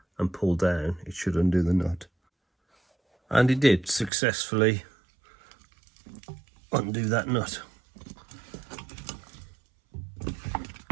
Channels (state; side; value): drops out; left; at 4.1 s